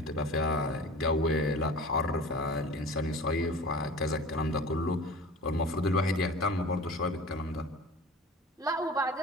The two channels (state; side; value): normal; both; correlation 0.39